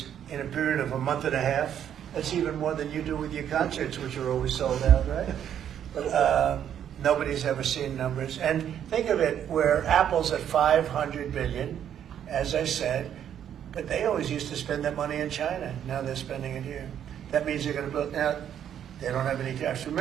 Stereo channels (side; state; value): left; quieter; 9.6 dB